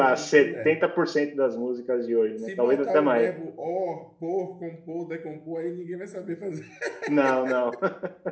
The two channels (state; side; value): identical; both; correlation 1.00